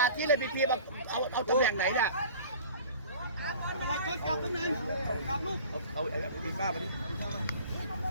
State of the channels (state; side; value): inverted; both; correlation -0.44